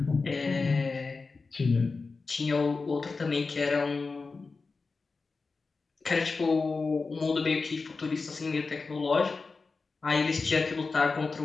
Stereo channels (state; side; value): quieter; right; 4.2 dB